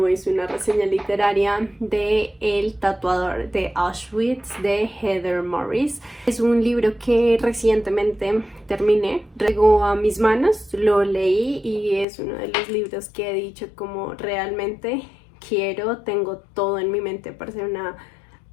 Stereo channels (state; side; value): drops out; right; at 12.1 s